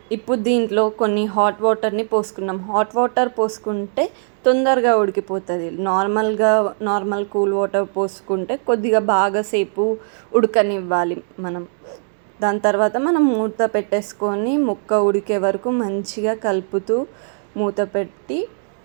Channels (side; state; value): left; silent; digital silence